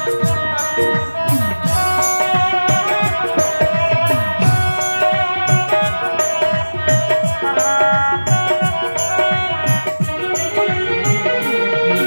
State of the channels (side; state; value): both; inverted; correlation -1.00